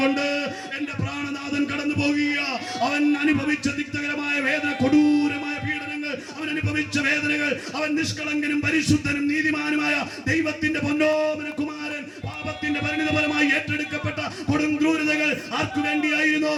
എന്റെ പ്രാണനാഥൻ കടന്നു പോകുക. അവൻ അനുഭവിച്ച തിക്തകരമായ വേദന, കൊടൂരമായ പീഡനങ്ങൾ, അവൻ അനുഭവിച്ച വേദനകൾ, അവൻ നിഷ്കളങ്കനും പരിശുദ്ധനും നീതിമാനുമായ ദൈവത്തിന്റെ പൊന്നോമന കുമാരൻ പാപത്തിന്റെ പരിണിതഫലമായി ഏറ്റെടുക്കപ്പെട്ട കൊടും ക്രൂരതകൾ ആർക്കു വേണ്ടിയായിരുന്നു?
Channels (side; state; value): both; identical; correlation 1.00